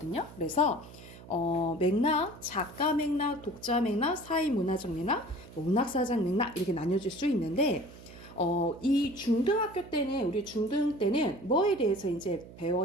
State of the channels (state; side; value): noise; right; hum, 18 dB below the sound